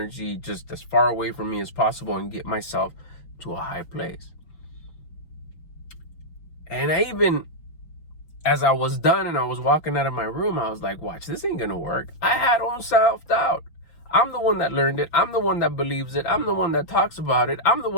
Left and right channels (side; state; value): right; late; 6.0 ms